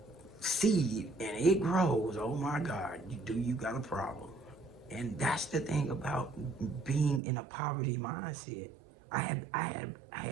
seed and it grows, oh my God, you got a problem. And that's the thing about being in a poverty mindset. I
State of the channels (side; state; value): left; drops out; at 7.2 s